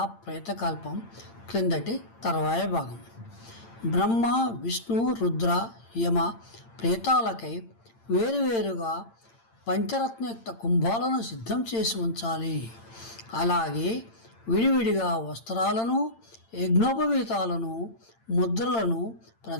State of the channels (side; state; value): right; late; 8.8 ms